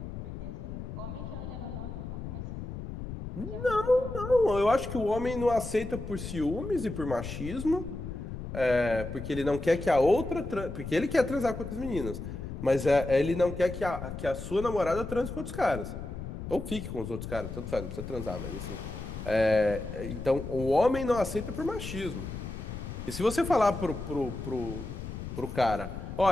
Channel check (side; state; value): left; noise; rumble, 8 dB below the sound